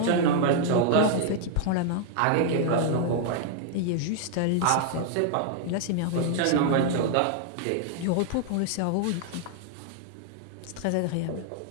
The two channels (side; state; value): both; different; correlation 0.00